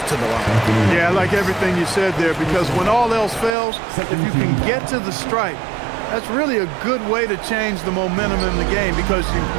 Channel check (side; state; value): left; drops out; at 3.6 s